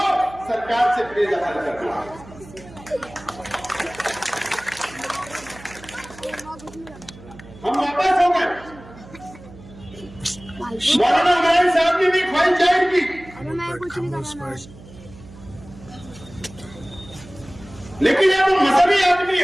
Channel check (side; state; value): right; noise; hum, 19 dB below the sound